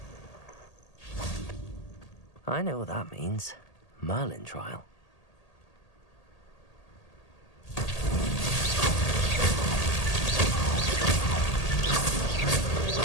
I know what that means. Merlin trial.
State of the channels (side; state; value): right; late; 1.8 ms